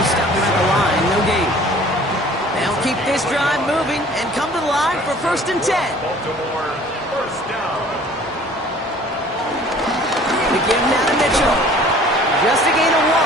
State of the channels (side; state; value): both; normal; correlation 0.51